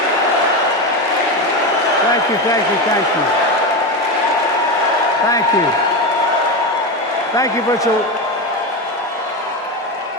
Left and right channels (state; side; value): normal; both; correlation 0.17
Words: Thank you, thank you, thank you. Thank you. Thank you, Butcher.